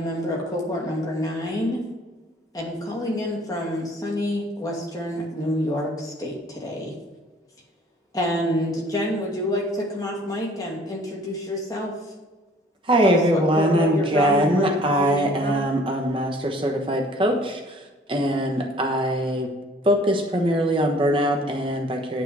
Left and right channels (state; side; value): normal; both; correlation 0.54